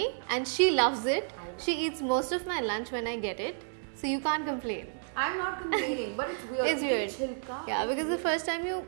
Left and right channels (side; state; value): left; silent; digital silence